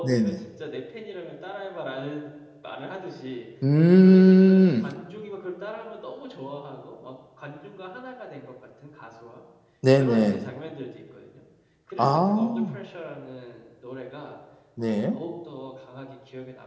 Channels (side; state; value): both; identical; correlation 1.00